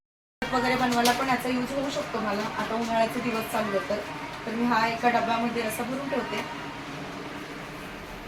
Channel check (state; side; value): identical; both; correlation 1.00